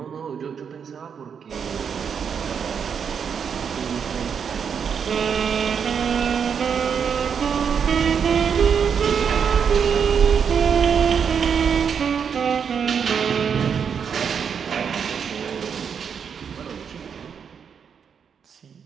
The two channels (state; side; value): quieter; left; 7.0 dB